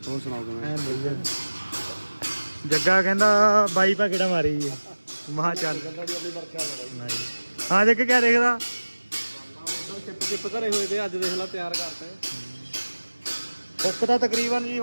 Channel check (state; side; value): inverted; both; correlation -1.00